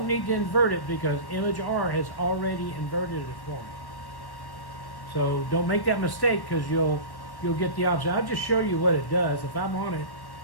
need to invert it because Image R has already inverted it for me. So don't make that mistake, because you'll get the opposite. I'll just show you what it does. If I'm on it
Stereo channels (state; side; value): late; right; 1.1 ms